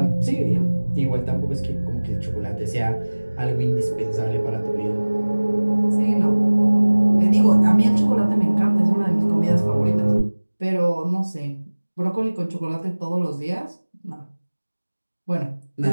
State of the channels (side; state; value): both; inverted; correlation -1.00